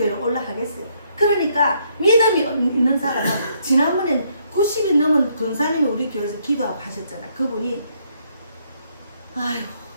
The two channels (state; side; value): inverted; both; correlation -0.71